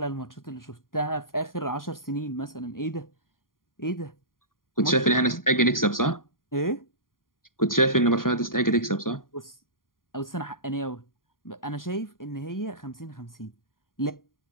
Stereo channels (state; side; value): late; right; 0.91 ms